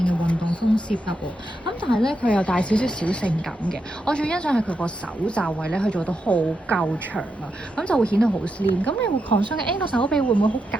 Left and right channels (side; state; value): both; normal; correlation 0.85